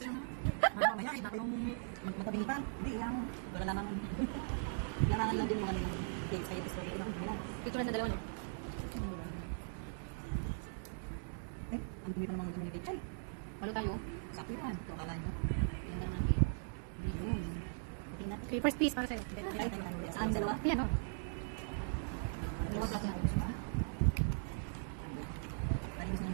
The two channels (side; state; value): left; silent; digital silence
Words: ano? Mamaya, iba pa yung magkabingi pa. Hindi, ilang. Wala lamang. Larangan lang dyan yung ano yung big side story. Tutulan ng dalawa, no? Eh, ang dumi pa namang mag-dumi kay Chay. Malo tayo. Sakto yan. Kala nyo. Yung naman kay. Yun. Okay, first piece para sa'yo. Tayo tayo ano ulit. Sa amin dalawa. Ayan o. Yung mga klase na ayos ba? Tadi gusto